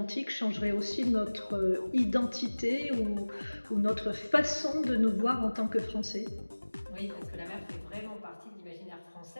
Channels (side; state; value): both; inverted; correlation -1.00